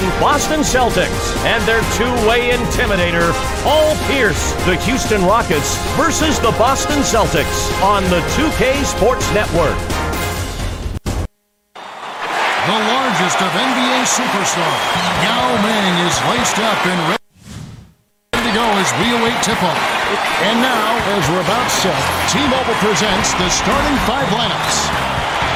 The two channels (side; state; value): both; identical; correlation 1.00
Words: Boston Celtics and their two-way intimidator, Paul Pierce. The Houston Rockets versus the Boston Celtics on the 2K Sports Network. The largest of NBA superstars, Yao Ming is laced up and ready to go as we await tip-off. And now, as we're about set, T-Mobile presents the starting five lineups.